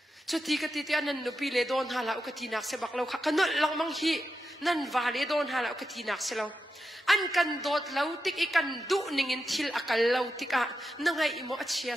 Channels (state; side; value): normal; both; correlation 0.89